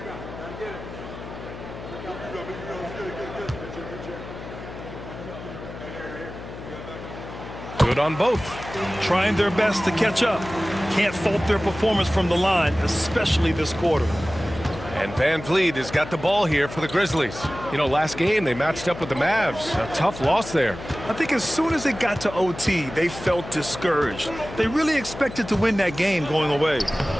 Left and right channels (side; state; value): left; noise; hum, 12 dB below the sound